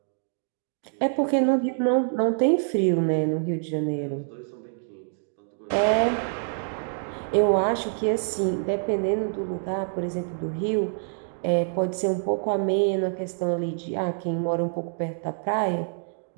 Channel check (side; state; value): left; silent; digital silence